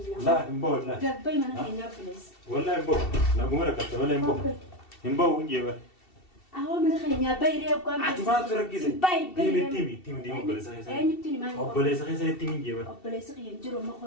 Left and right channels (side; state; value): right; late; 2.7 ms